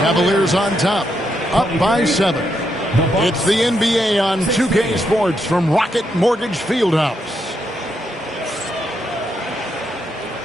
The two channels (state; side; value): normal; both; correlation 0.80